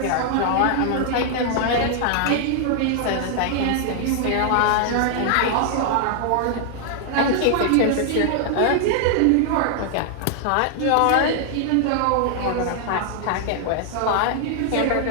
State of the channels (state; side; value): different; both; correlation 0.00